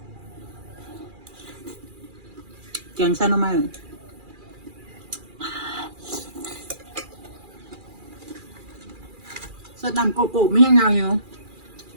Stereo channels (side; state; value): left; late; 2.4 ms